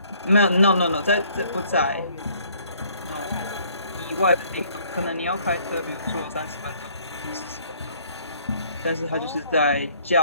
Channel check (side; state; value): both; inverted; correlation -0.61